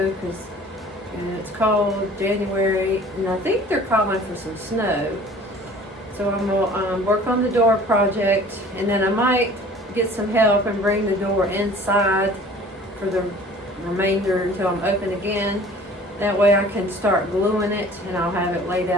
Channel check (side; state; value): both; normal; correlation 0.48